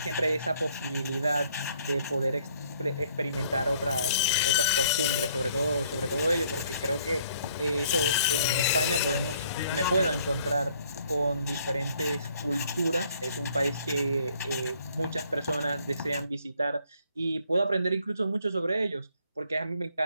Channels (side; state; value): both; inverted; correlation -0.63